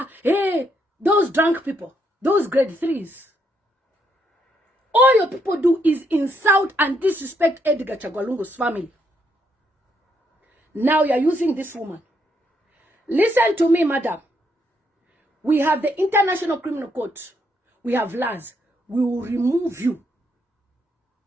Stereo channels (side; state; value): both; normal; correlation 0.75